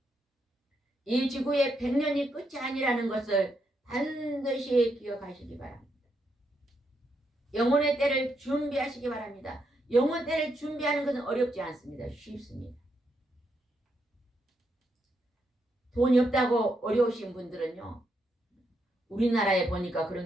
이 지구의 100년이 끝이 아니라는 것을 반드시 기억하시기 바랍니다. 영혼의 때를 준비하시기 바랍니다. 영혼 때를 준비하는 것은 어렵지 않습니다. 쉽습니다. 돈이 없다고 어려우신 분들은요. 우리나라에 보니까 그런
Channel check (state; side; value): normal; both; correlation 0.79